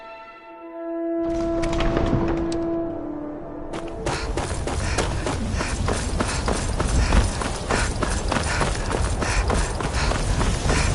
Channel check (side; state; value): both; identical; correlation 1.00